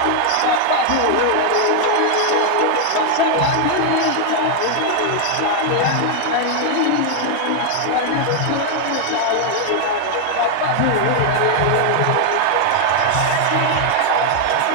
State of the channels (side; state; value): both; different; correlation 0.00